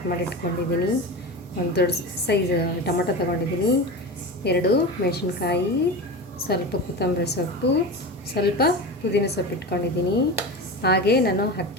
ಮಾಡಿ ಇಟ್ಕೊಂಡಿದ್ದೀನಿ, ಒಂದು ದೊಡ್ಡ ಸೈಜ್ ಟೊಮೊಟೊ ತೊಗೊಂಡಿದ್ದೀನಿ, 2 ಮೆಣಸಿನ್ಕಾಯಿ, ಸ್ವಲ್ಪ ಕೊತ್ತಂಬರಿ ಸೊಪ್ಪು, ಸ್ವಲ್ಪ ಪುದೀನ ಸೊಪ್ಪು ಇಟ್ಕೊಂಡಿದ್ದೀನಿ. ಹಾಗೆ ನಾನು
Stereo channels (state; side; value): normal; both; correlation 0.26